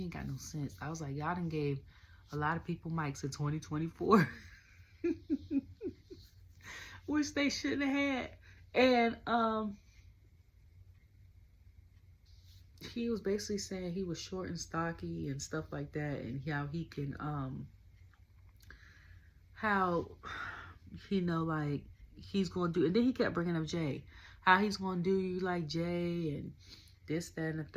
ain't got no sense. I was like, y'all done gave a lot of people mics in 2024. Which they shouldn't have had. And he was basically saying he was short and stocky and stuff like that, and how he can how, you know, like, he's going to do, and then he kept bringing up Jay, how he's going to do you like Jay, and this, that, and the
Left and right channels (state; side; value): identical; both; correlation 1.00